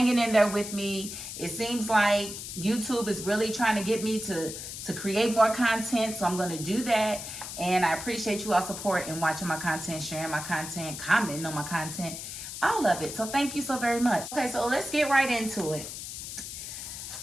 in there with me. It seems like YouTube is really trying to get me to create more content, so I'm going to do that. And I appreciate you all support and watching my content, sharing my content, commenting on my content, all of it. So thank you so very much. Okay, so let's get right into it.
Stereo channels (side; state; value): left; noise; hiss, 8 dB below the sound